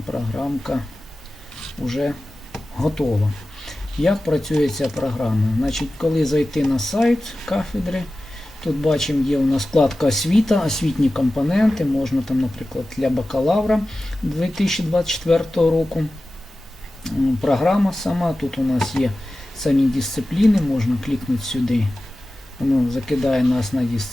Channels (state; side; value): normal; both; correlation 0.95